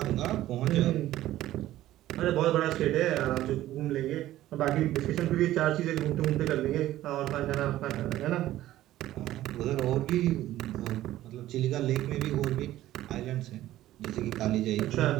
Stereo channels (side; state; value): left; quieter; 14.4 dB